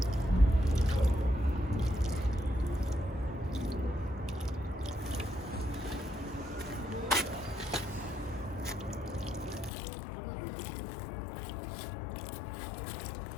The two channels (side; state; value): right; drops out; at 9.7 s